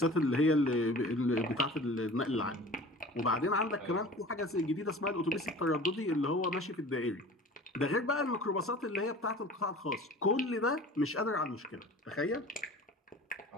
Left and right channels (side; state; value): both; normal; correlation 0.41